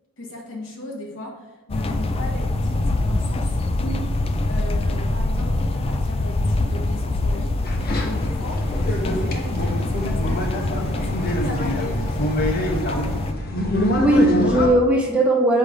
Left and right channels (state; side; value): normal; both; correlation 0.69